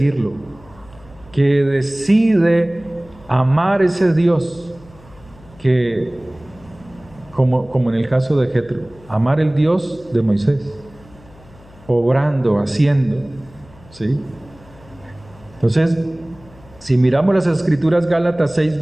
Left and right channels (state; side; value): noise; left; hum, 24 dB below the sound